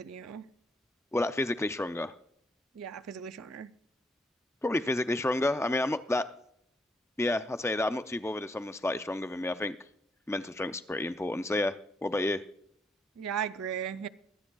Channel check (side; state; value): both; normal; correlation 0.73